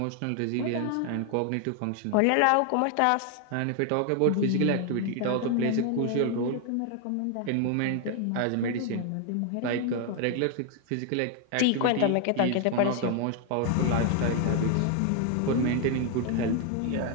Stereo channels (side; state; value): both; different; correlation 0.00